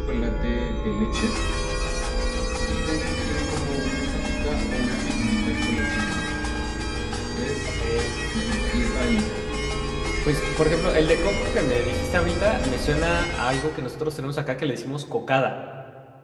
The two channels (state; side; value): identical; both; correlation 1.00